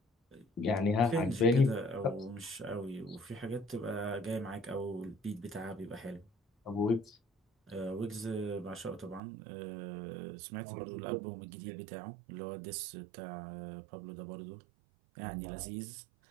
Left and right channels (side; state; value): left; drops out; at 9.2 s